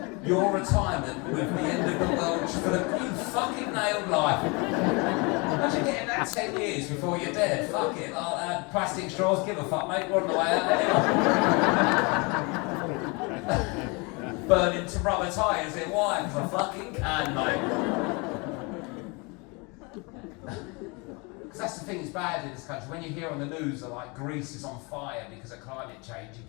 Your retirement with the end of the world for the you fucking nailed life. Imagine getting that 10 years before you're dead. Fuck it. Plastic straws, give a fuck, mate. We're on the way out anyway. Burning to rubber tyres in wine for fucking can, mate. Because that's the thing that's bad in this country. When you hear on the news that like Greece is on fire because of climate change, you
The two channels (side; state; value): right; quieter; 29.2 dB